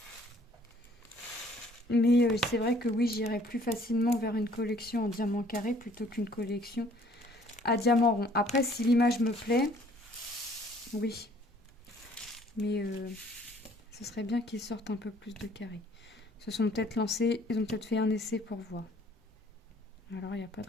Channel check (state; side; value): normal; both; correlation 0.58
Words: Mais c'est vrai que oui, j'irais plus facilement vers une collection en diamant carré plutôt qu'une collection à diamant rond. Après, si l'image me plaît, oui. Mais ce serait bien qu'ils sortent un peu plus de carrés. Ils se sont peut-être lancés, ils ont peut-être fait un essai pour voir. Alors, il n'y a pas de